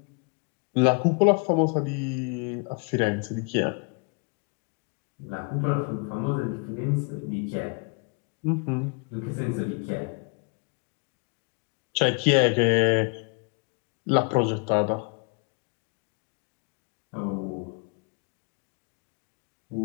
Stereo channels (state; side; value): quieter; right; 33.6 dB